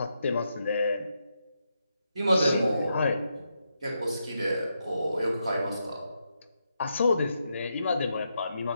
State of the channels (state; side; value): inverted; both; correlation -0.83